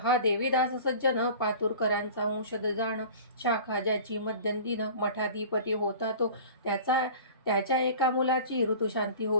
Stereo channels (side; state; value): both; inverted; correlation -0.40